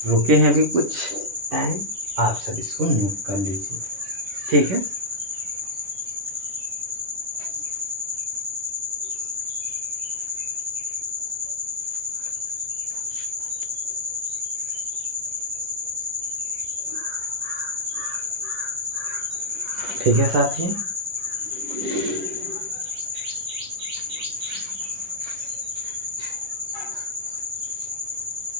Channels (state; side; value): late; left; 11 ms